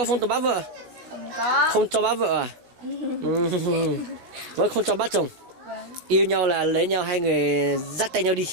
photo bắt vợ. Không có. Không cho bắt vợ à? Vâng, không cho bắt chồng. Vâng. Yêu nhau là lấy nhau, hai người dắt tay nhau đi.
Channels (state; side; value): late; left; 16 ms